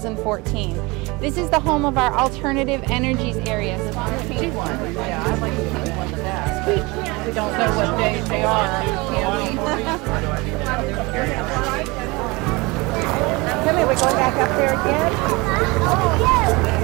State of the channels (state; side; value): quieter; left; 24.6 dB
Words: This is the home of our alternative energies area. Yeah, I like the pink one the best. We don't know what days they are. Come here, we're going back up there again?